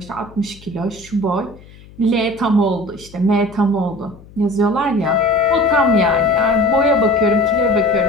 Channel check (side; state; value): left; noise; hum, 22 dB below the sound